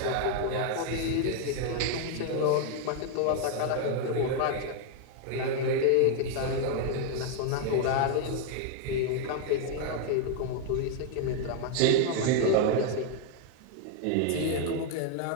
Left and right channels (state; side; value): different; both; correlation 0.00